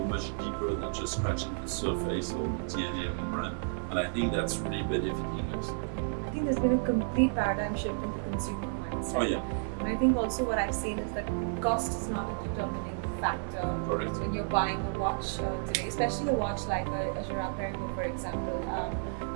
much deeper than just scratching the surface or the DNA of the brand, and I think that's really benefiting us. I think there's been a complete paradigm shift in the consumer mindset. Oh yeah. And I think also what I've seen is that cost is not a determining factor. Correct. When you're buying a watch today, especially a watch like a GirardPerregaux, for example.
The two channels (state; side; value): silent; left; 57 dB below the other